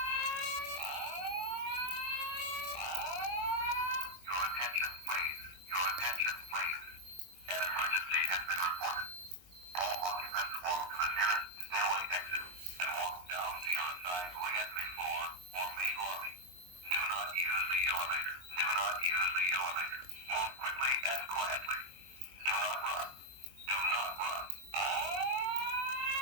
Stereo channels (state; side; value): late; left; 22 ms